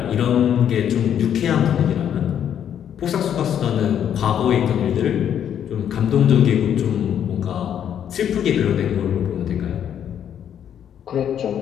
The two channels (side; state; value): right; quieter; 9.4 dB